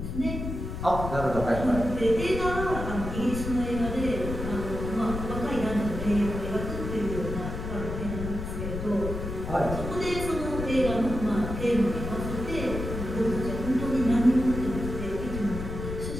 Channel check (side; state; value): left; noise; rumble, 5 dB below the sound